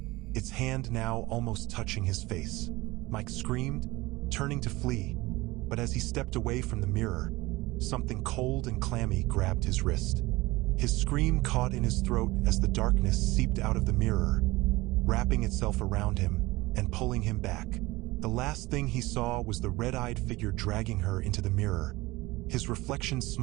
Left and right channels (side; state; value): left; quieter; 20.7 dB